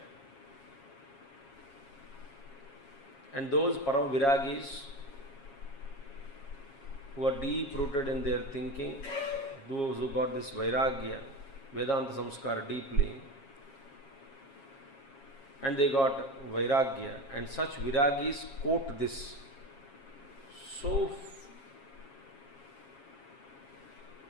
and those param viragis who are deep rooted in their thinking, those who got this vairagya, Vedanta samskar deeply, and they got vairagya, and such viragis quote this so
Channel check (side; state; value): right; late; 7.3 ms